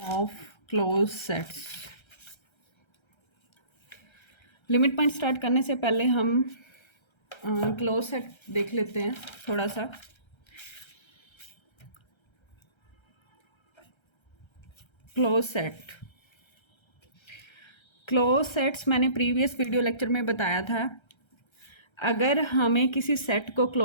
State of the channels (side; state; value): right; late; 1.3 ms